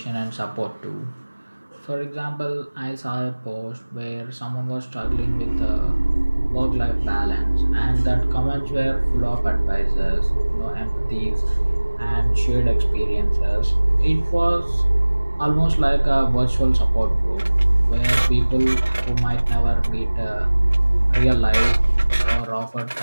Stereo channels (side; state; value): both; inverted; correlation -1.00